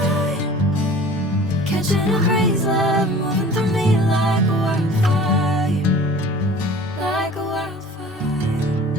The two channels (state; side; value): normal; both; correlation 0.45